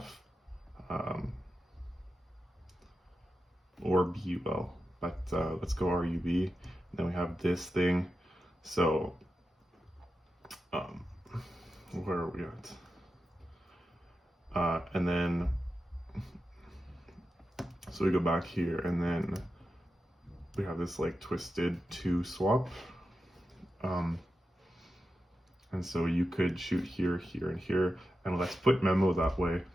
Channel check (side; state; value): both; normal; correlation 0.90